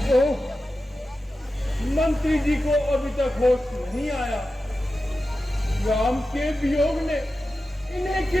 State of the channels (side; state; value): both; normal; correlation 0.92